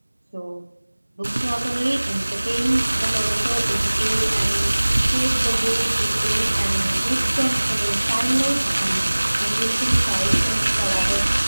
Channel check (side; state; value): both; inverted; correlation -1.00